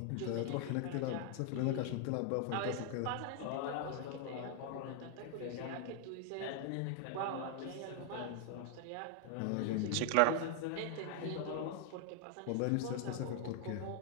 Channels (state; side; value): different; both; correlation 0.00